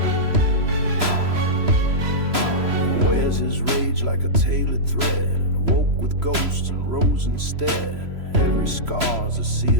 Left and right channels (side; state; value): left; late; 3.0 ms